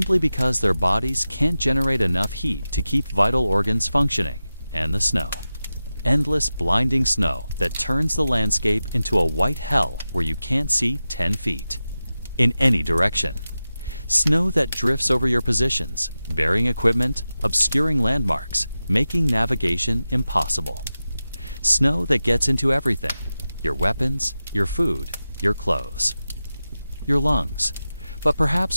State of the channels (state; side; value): inverted; both; correlation -0.94